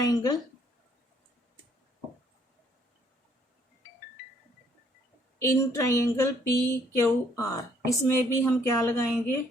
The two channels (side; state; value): both; normal; correlation 0.65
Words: in triangle P Q R, इसमें भी हम क्या लगाएंगे,